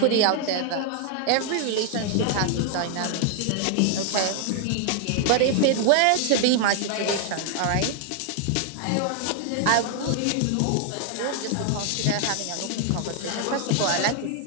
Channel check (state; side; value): different; both; correlation 0.00